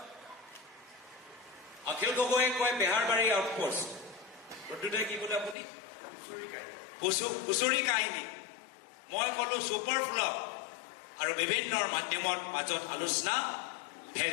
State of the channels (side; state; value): right; drops out; at 5.6 s